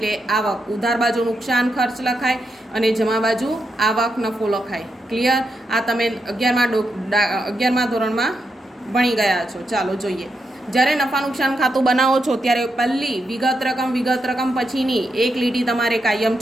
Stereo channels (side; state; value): both; normal; correlation 0.84